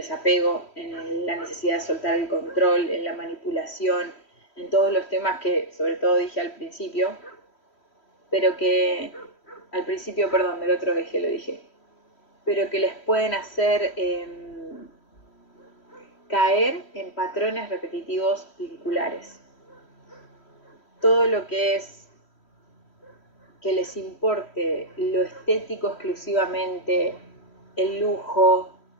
en la necesidad de soltar el control, en la manipulación, en todos los temas que sobre todo dije al principio, pero que al principio, perdón, del otro eje lo dije, pero que les pueden hacer caer en patrones repetitivos vinculares. Todo lo que es que les importe lo estético exclusivamente, el lujo,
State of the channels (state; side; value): late; right; 3.1 ms